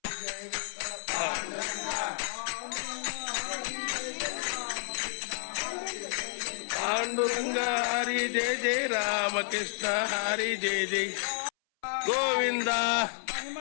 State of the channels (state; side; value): silent; right; 57 dB below the other